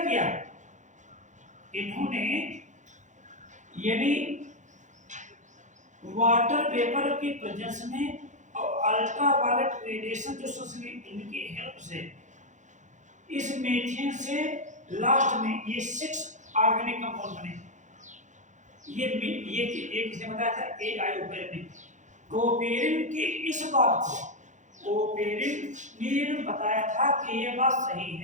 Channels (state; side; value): late; left; 0.35 ms